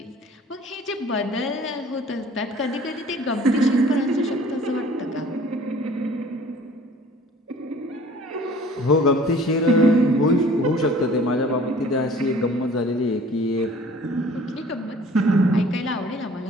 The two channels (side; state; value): both; normal; correlation 0.50